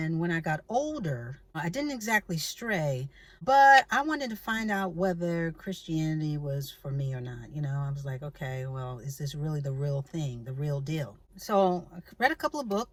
when I got older, I didn't exactly stray, but I wanted to find out whether Christianity was for me or not. I was like, okay, well, is this really the real thing, the real deal? So I read a couple of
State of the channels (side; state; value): both; identical; correlation 1.00